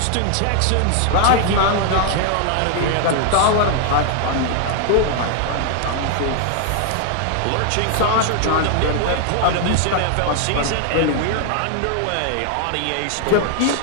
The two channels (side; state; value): both; different; correlation 0.00